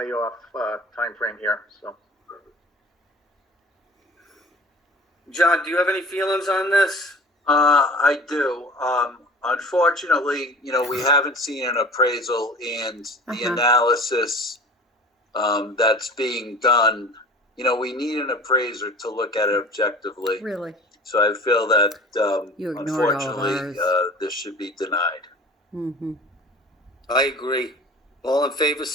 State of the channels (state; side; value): normal; both; correlation 0.42